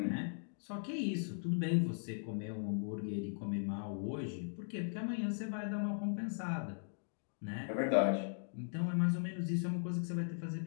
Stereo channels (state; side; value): silent; right; digital silence